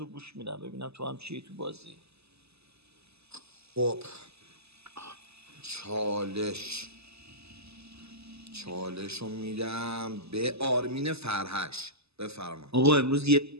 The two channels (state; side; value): late; left; 0.79 ms